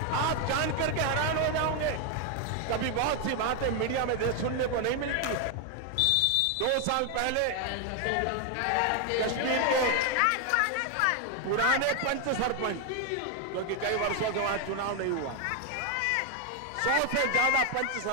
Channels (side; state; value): both; different; correlation 0.01